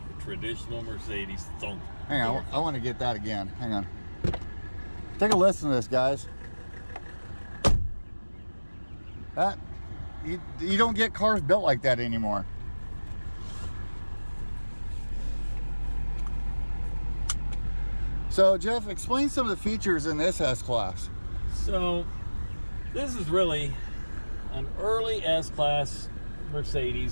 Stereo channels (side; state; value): both; inverted; correlation -1.00